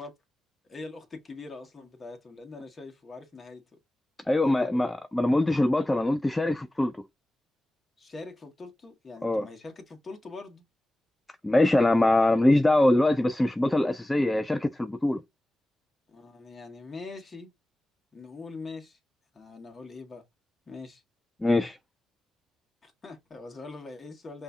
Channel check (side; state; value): both; normal; correlation 0.96